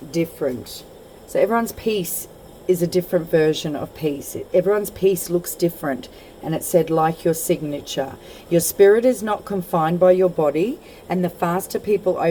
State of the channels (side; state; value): both; identical; correlation 1.00